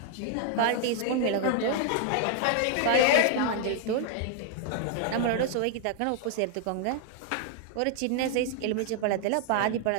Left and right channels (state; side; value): different; both; correlation 0.00